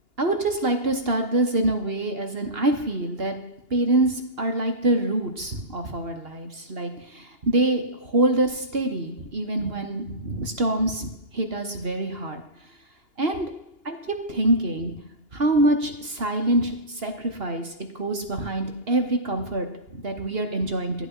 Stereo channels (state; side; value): late; left; 2.8 ms